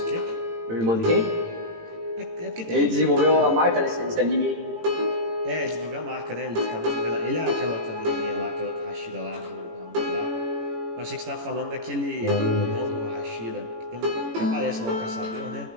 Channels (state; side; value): late; left; 18 ms